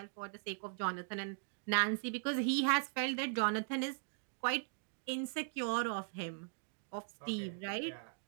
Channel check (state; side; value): silent; left; digital silence